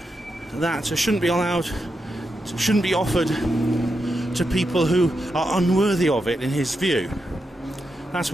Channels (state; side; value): normal; both; correlation 0.86